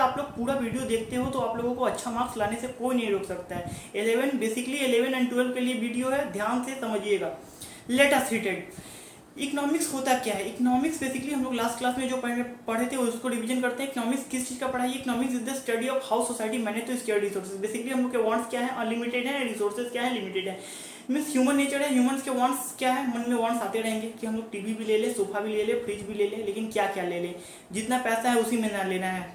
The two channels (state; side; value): identical; both; correlation 1.00